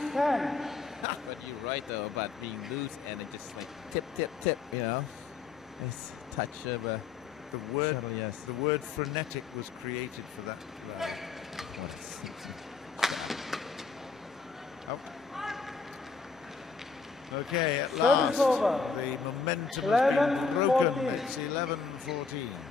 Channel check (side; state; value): right; quieter; 5.0 dB